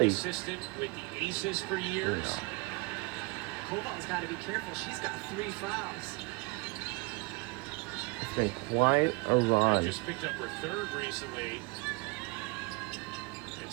assistant with the Aces for years. Koval's got to be careful. She's got 3 fouls. It's been quite a run. Just picked up her 3rd recently. And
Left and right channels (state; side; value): quieter; left; 28.4 dB